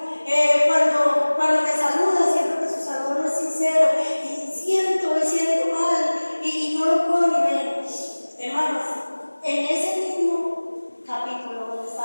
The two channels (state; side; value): inverted; both; correlation -1.00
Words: Cuando me saluda, siento que su saludo no es sincero, y siento mal, y no lo puedo ni ver. Hermanos, en ese mismo capítulo donde está